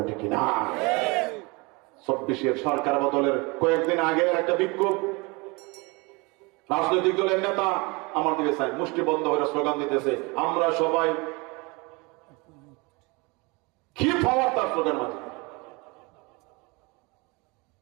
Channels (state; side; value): quieter; left; 27.1 dB